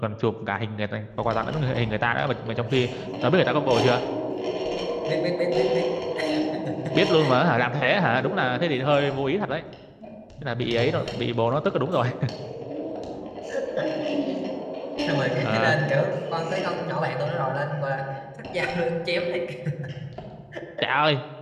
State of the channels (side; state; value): both; identical; correlation 1.00